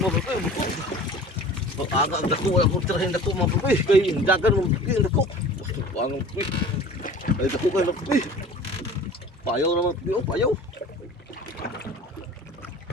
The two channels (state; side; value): normal; both; correlation 0.42